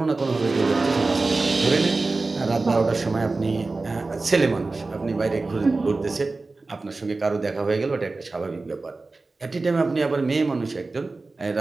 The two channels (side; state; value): left; quieter; 3.5 dB